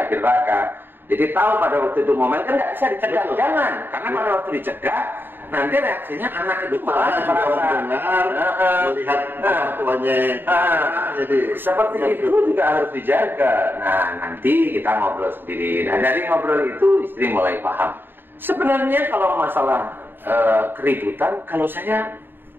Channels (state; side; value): late; left; 0.096 ms